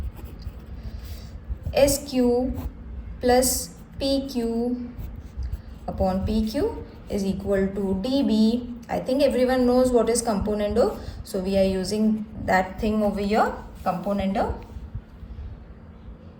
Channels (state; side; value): identical; both; correlation 1.00